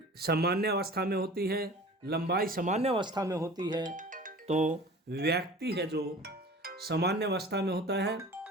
सामान्य अवस्था में होती है, लंबाई सामान्य अवस्था में होती है, तो व्यक्ति है जो सामान्य अवस्था में होता है,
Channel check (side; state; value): both; normal; correlation 0.41